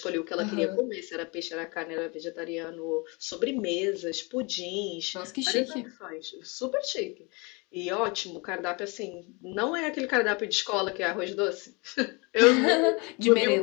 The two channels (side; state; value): right; quieter; 28.9 dB